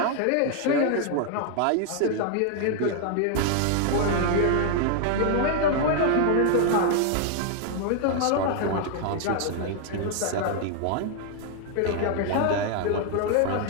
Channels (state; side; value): different; both; correlation 0.00